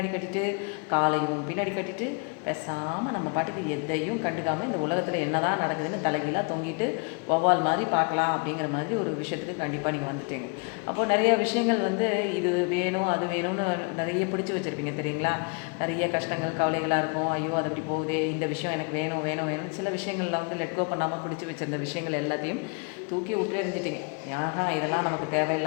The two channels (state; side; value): quieter; right; 34.5 dB